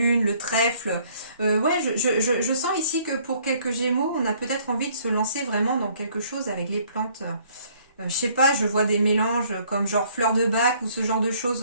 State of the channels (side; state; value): both; inverted; correlation -0.61